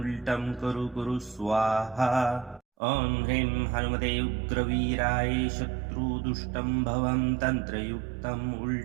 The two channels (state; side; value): drops out; left; at 2.6 s